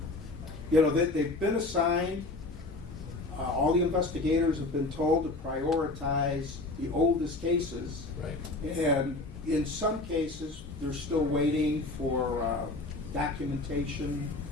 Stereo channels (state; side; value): quieter; right; 3.1 dB